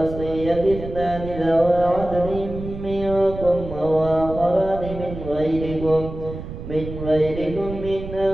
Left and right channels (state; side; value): noise; right; rumble, 10 dB below the sound